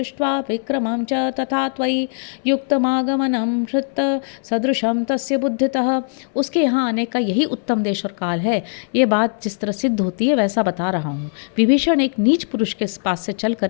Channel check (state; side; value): silent; right; 61 dB below the other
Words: विक्रमं च तथा त्वयि युक्तमागमनं हृत सदृश तस्य बुद्धितः। उसके यहाँ आने का यही उत्तम देश और काल है। ये बात जिस तरह सिद्ध होती है वैसा बता रहा हूँ। विभीषण एक नीच पुरुष के पास से चलकर